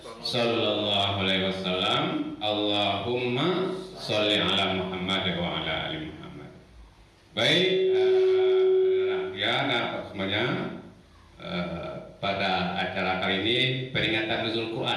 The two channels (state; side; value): identical; both; correlation 1.00